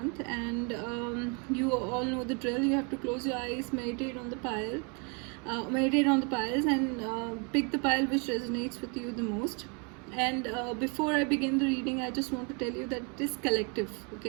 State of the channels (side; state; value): left; quieter; 34.7 dB